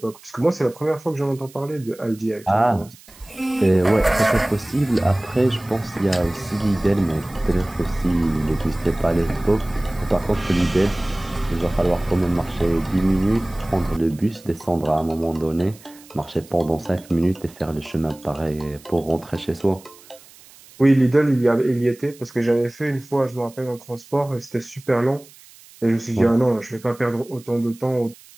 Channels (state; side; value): noise; right; hiss, 23 dB below the sound